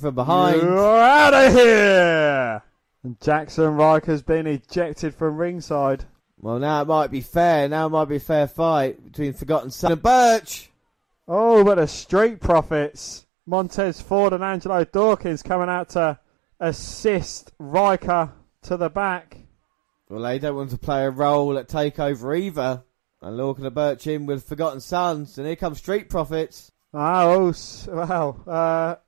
behind. You're out of here! And Jackson Riker's been ejected from ringside. Well, now it might be fair. Now it might be a fair fight between Forgotten Son and Burch. Oh, but the Street Profits. Montez Ford and Angelo Dawkins coming out to assist Riker to the back. Well, they don't want to play a role at TakeOver either. And Lorcan and Burch in with Forgotten Sons. And here comes Street Profits.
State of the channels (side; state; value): left; drops out; at 13.2 s